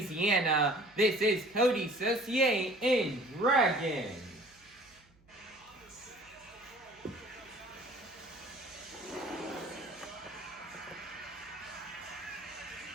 This is Coty Saucier in Dragon.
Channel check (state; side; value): noise; right; hum, 30 dB below the sound